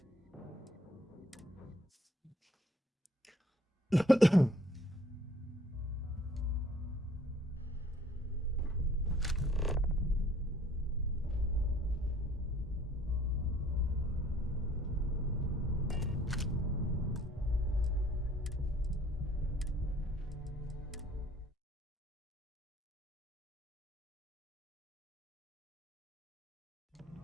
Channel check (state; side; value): normal; both; correlation 0.58